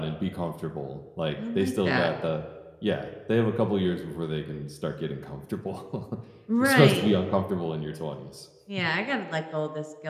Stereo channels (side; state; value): both; identical; correlation 1.00